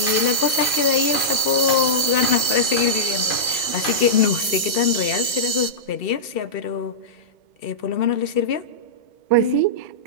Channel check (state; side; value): late; right; 2.1 ms